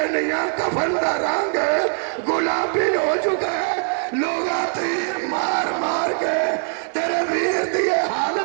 کفن دا رنگ گلابی ہو چکا ہے، لوگا تیر مار مار کے تیرے ویر دیئے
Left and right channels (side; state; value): left; silent; 59 dB below the other